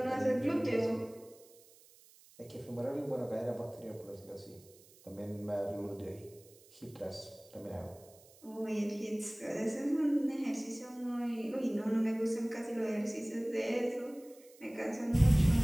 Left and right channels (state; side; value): noise; right; hiss, 25 dB below the sound